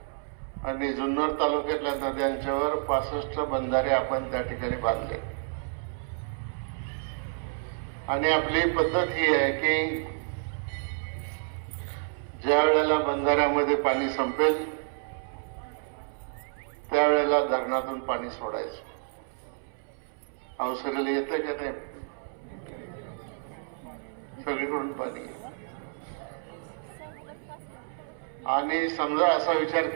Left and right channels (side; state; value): left; silent; 58 dB below the other